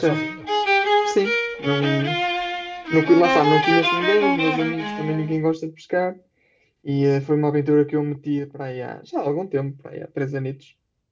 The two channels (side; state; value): both; identical; correlation 1.00